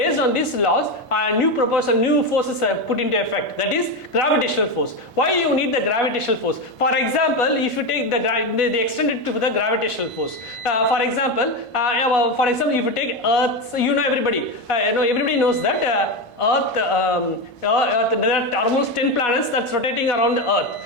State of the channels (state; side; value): late; right; 1.5 ms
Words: on these laws, new forces are put into effect. That is gravitational force. Why you need the gravitational force? For example, if you take they extend it to the gravitational force. For example, if you take Earth, everybody knows that. Earth, there are almost 10 planets that's rotating around Earth.